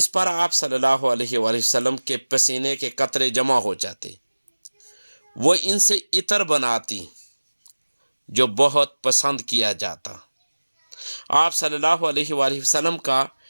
پر آپ صلی اللہ علیہ وآلہ وسلم کے پسینے کے قطرے جمع ہو جاتے۔ وہ ان سے عطر بناتی جو بہت پسند کیا جاتا۔ آپ صلی اللہ علیہ وآلہ وسلم کا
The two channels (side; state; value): both; inverted; correlation -1.00